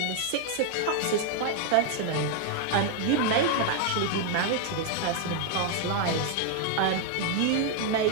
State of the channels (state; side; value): different; both; correlation 0.00